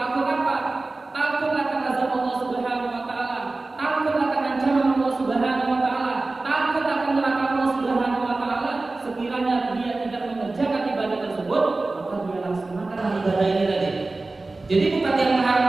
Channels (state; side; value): quieter; left; 3.3 dB